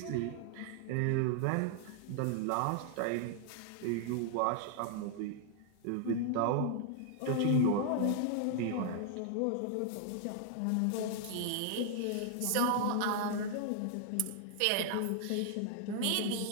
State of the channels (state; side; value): different; both; correlation 0.00